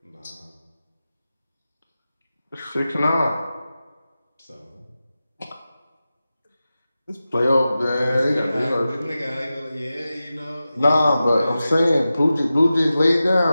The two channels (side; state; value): both; inverted; correlation -0.94